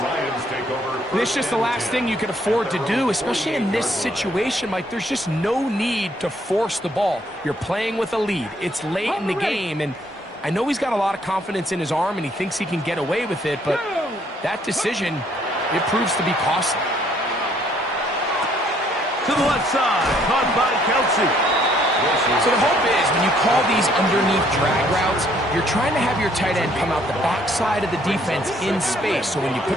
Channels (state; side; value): normal; both; correlation 0.65